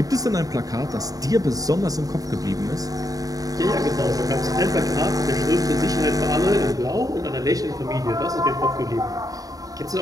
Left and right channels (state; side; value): late; left; 0.18 ms